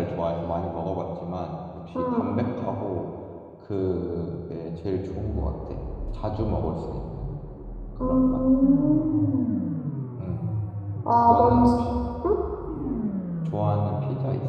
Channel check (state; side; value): identical; both; correlation 1.00